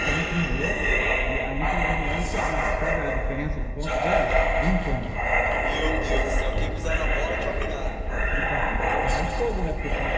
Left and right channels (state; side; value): identical; both; correlation 1.00